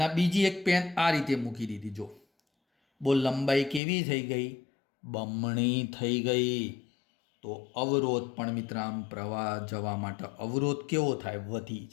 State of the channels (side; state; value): right; drops out; at 3.8 s